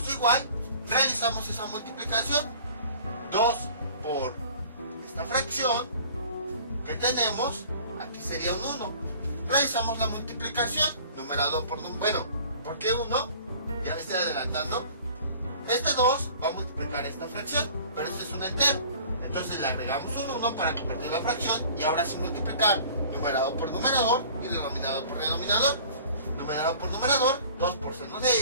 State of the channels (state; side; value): inverted; both; correlation -0.47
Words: igual. Realizamos esa multiplicación. 2 por esta fracción que tenemos, aquí sería un 1. Realizamos la multiplicación. Numerador por número. Bueno, ¿por qué 1? Ya me estoy adelantando. Este 2 va a multiplicar esta fracción, pero este es un entero. Entonces le agregamos un 1 para convertir la fracción y ahora sí multiplicar numerador por numerador y denominador por denominador. Numerador por numerador, 2 por seno de